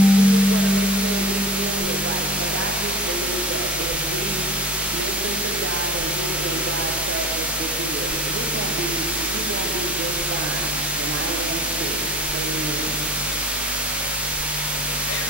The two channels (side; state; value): both; normal; correlation 0.35